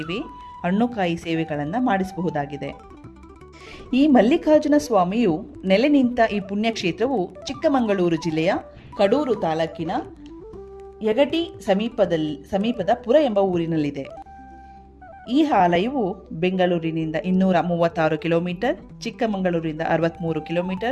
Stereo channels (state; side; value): identical; both; correlation 1.00